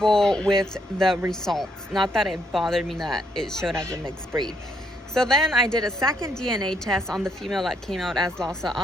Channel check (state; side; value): normal; both; correlation 0.73